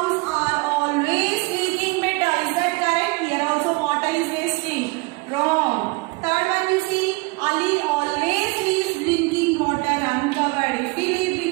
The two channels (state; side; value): quieter; left; 25.5 dB